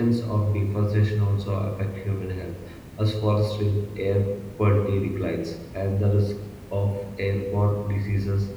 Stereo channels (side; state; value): both; identical; correlation 1.00